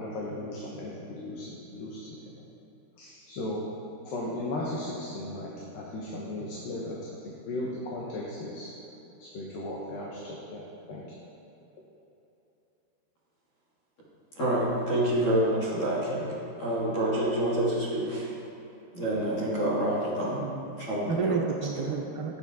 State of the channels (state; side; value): late; right; 12 ms